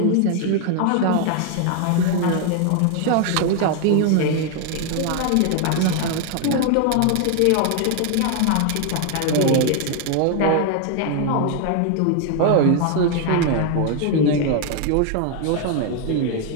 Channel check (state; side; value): different; both; correlation 0.00